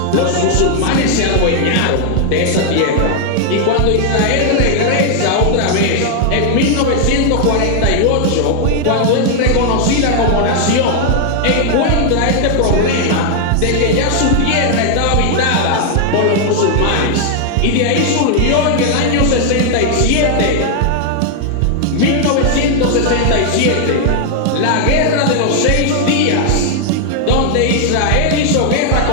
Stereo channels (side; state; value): both; different; correlation 0.00